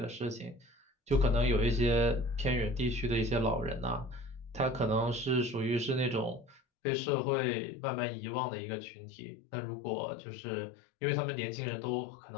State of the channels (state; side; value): drops out; right; at 6.6 s